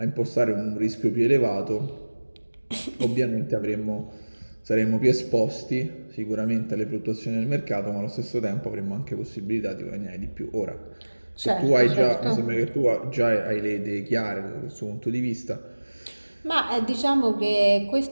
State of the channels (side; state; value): both; inverted; correlation -1.00